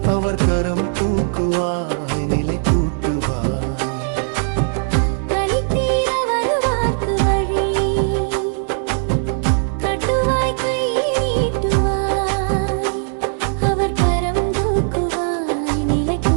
அவர் கரம் தூக்குவாய், நிலை கூட்டுவாய். கலி தீர வருவார்க்கு வழி காட்டுவாய், கை நீட்டுவாய், அவர் கரம் தூக்குவாய், நிலை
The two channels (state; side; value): silent; left; digital silence